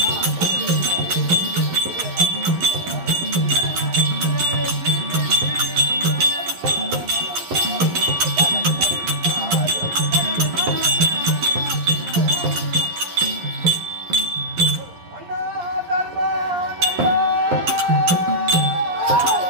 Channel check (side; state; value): left; late; 11 ms